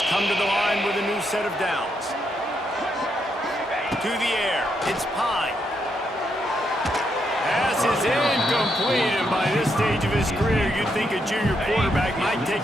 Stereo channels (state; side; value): normal; both; correlation 0.79